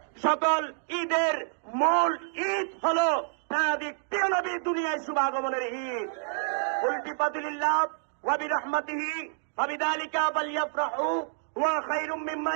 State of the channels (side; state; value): left; silent; digital silence